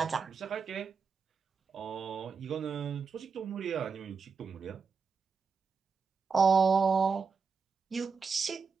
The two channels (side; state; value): left; quieter; 5.4 dB